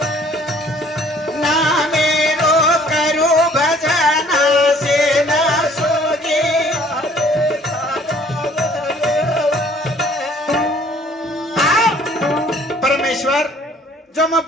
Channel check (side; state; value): both; normal; correlation 0.57